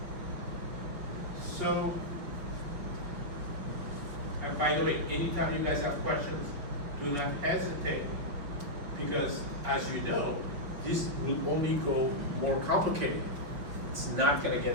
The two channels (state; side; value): late; left; 6.8 ms